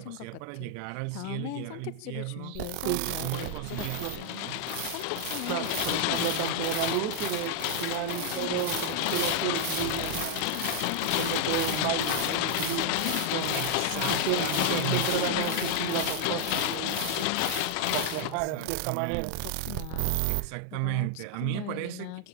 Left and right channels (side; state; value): both; different; correlation 0.00